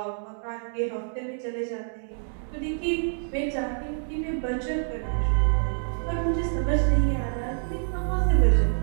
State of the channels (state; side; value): silent; left; digital silence